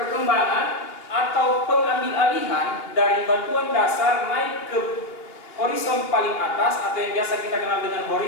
atau pengambil-alihan dari batuan dasar naik ke horizon paling atas atau yang biasa kita kenal dengan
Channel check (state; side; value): late; right; 2.9 ms